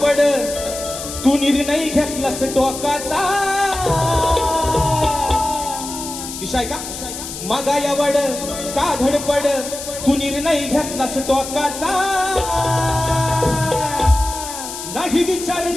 तू निर्णय घेतलास टोकाचा. विषय का मागा यावड का धडपड, तू निर्णय घेतलास टोकाचा. नाही विचार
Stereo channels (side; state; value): left; noise; hiss, 9 dB below the sound